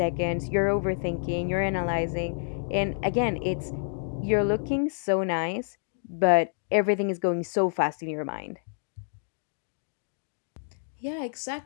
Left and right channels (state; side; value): silent; right; digital silence